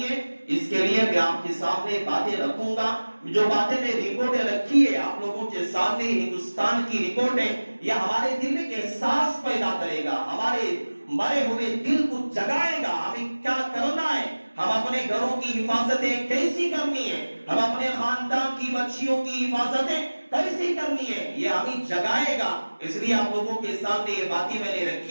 اس کے لیے میں آپ کے سامنے باتیں رکھوں گا۔ جو باتیں میں رپورٹیں رکھی ہے آپ لوگوں کے سامنے، ہندوستان کی رپورٹیں، یہ ہمارے دل میں احساس پیدا کرے گا، ہمارے مرے ہوئے دل کو جگائے گا، ہمیں کیا کرنا ہے، ہم اپنے گھروں کی حفاظتیں کیسی کرنی ہے، ہم اپنے خاندان کی بچیوں کی حفاظتیں کیسی کرنی ہے، یہ ہمیں جگائے گا۔ اس لیے آپ لوگوں کے سامنے یہ باتیں میں نے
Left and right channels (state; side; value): inverted; both; correlation -1.00